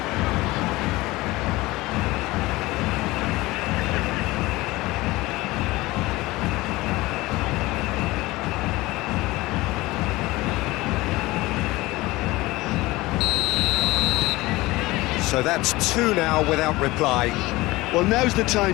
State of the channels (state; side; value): quieter; right; 20.0 dB